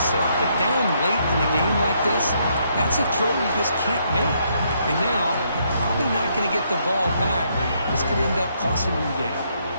but down late in the game like this, that's a throw you just can't make. And now, you're probably not going to get the ball back. This could end up costing them the game.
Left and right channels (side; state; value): both; inverted; correlation -0.73